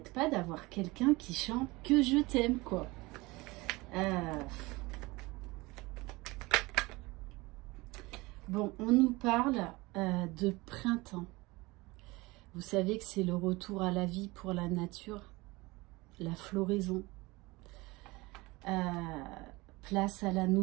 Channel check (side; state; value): left; quieter; 22.6 dB